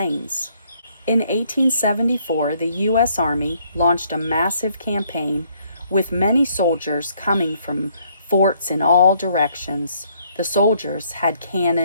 In 1874, the U.S. Army launched a massive campaign with many soldiers coming from forts in all directions. The soldiers had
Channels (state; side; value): inverted; both; correlation -0.67